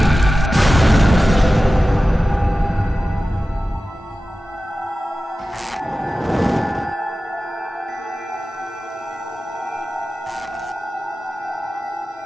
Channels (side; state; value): both; normal; correlation 0.95